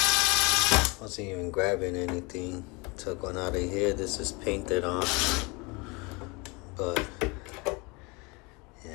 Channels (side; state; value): right; quieter; 27.8 dB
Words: wasn't even grabbing anything. Took one out of here. This is painted on, but